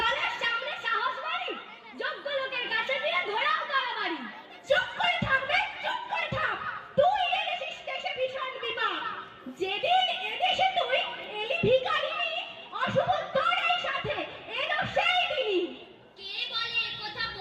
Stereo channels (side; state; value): both; identical; correlation 1.00